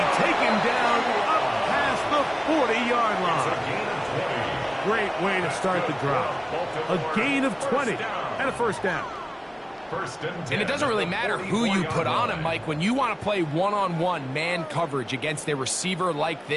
taken down up past the 40-yard line. Great way to start the drive. A gain of 20 and a 1st down. And it doesn't really matter who you put on him, Mike. When you want to play one-on-one man coverage against a receiver like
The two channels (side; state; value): both; identical; correlation 1.00